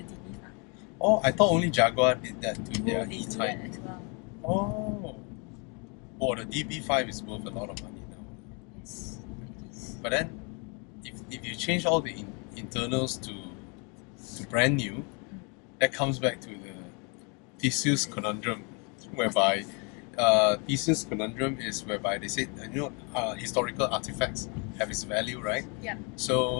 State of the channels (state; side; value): quieter; right; 33.9 dB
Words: DB5. Oh, I thought only Jaguar did that to their they do E-Type. that as well. Oh, the DB5 is worth a lot of money now. Yes, it is. But then, if you change all the internals to brand new, that comes back to the Theseus Conundrum, whereby Theseus Conundrum is whereby they said, historical artifacts have its value, right? Yeah.